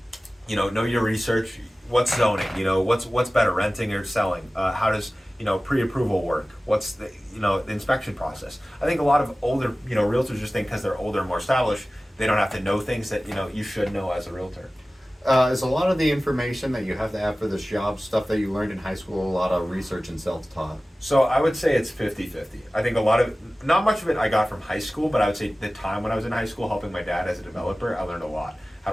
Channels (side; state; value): both; normal; correlation 0.97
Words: know your research. What's zoning? What's better, renting or selling? How does pre-approval work? What's the inspection process? I think a lot of older realtors just think because they're older and more established, they don't have to know things that you should know as a realtor. Is a lot of the information that you have to have for this job stuff that you learned in high school a lot of research and self-taught? So I would say it's 50-50. I think not much of it I got from high school, but I would say the time when I was in high school helping my dad as a developer, I learned a lot. How